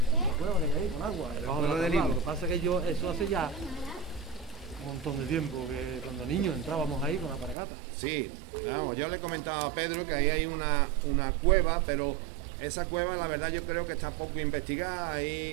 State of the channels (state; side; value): drops out; left; at 7.6 s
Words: cueva que hay ahí con agua, debajo de la tabla. Lo que pasa es que eso hace ya un montón de tiempo, que cuando niños entrábamos ahí con la paragata. Sí, vamos, yo le he comentado a Pedro que ahí hay una cueva, pero esa cueva, la verdad, yo creo que está poco investigada.